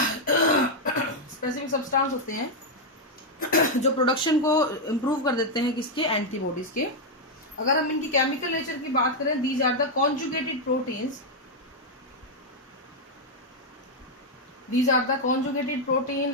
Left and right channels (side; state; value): both; normal; correlation 0.00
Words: स्पेसिफिक सब्सटेंस होते हैं जो प्रोडक्शन को इम्प्रूव कर देते हैं किसके, एंटीबॉडीज के। अगर हम इनकी केमिकल नेचर की बात करें, these are the conjugated proteins, these are the conjugated protein,